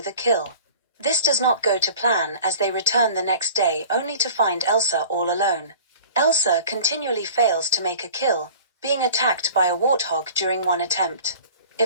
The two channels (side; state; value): both; inverted; correlation -0.43